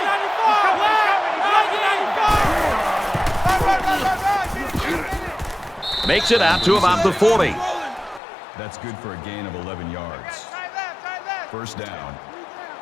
90. Makes it out to about the 40. That's good for a gain of 11 yards. First down.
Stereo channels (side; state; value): right; drops out; at 8.2 s